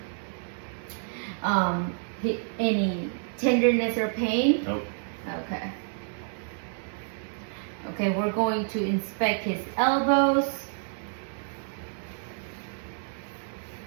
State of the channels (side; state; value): left; silent; digital silence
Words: any tenderness or pain. Nope. Okay. Okay, we're going to inspect his elbows.